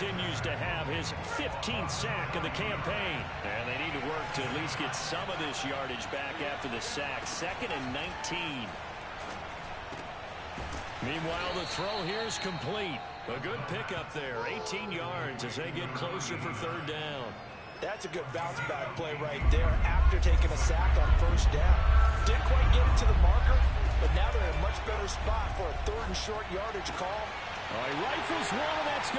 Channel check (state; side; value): identical; both; correlation 1.00